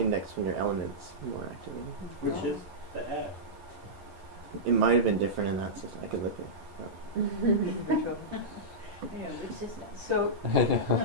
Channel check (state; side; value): late; left; 11 ms